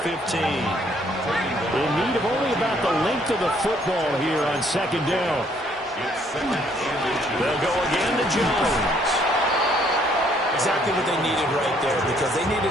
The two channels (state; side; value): normal; both; correlation 0.65